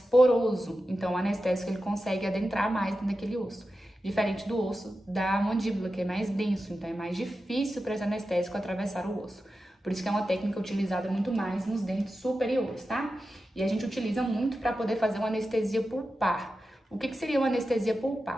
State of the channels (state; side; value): normal; both; correlation 0.92